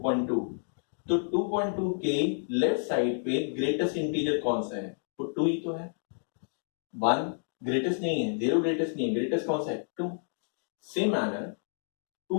तो 2.2 के लेफ्ट साइड पे ग्रेटेस्ट इंटीजर कौन सा है? तो 2 ही तो है. 1 ग्रेटेस्ट नहीं है, 0 ग्रेटेस्ट नहीं है, ग्रेटेस्ट कौन सा है? 2. सेम मैनर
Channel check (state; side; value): silent; right; digital silence